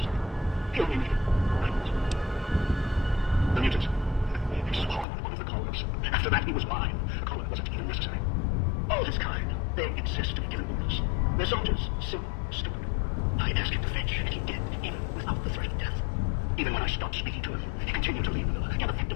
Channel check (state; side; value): drops out; right; at 5.1 s